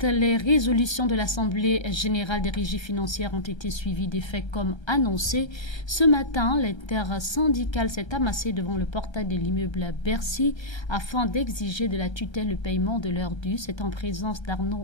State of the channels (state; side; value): late; right; 1.3 ms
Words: les résolutions de l'Assemblée générale des régies financières ont été suivies des faits comme annoncé. Ce matin, l'intersyndicale s'est amassée devant le portail de l'immeuble Bercy afin d'exiger de la tutelle le paiement de leurs dus. C'est en présence